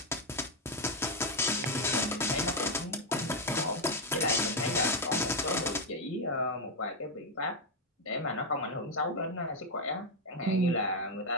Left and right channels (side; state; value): both; normal; correlation 0.04